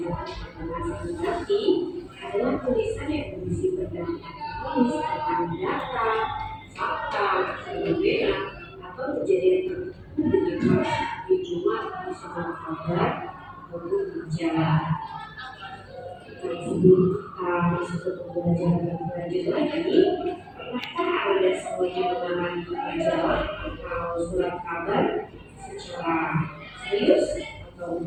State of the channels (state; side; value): identical; both; correlation 1.00